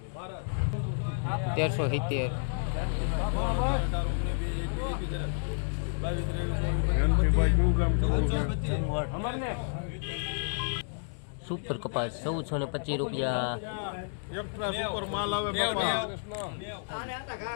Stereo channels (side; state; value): right; silent; digital silence